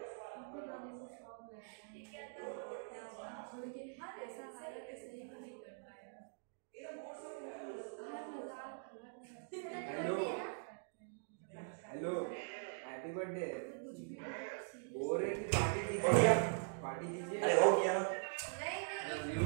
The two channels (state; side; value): silent; left; digital silence